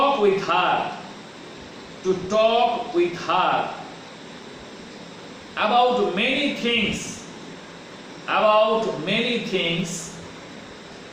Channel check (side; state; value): both; identical; correlation 1.00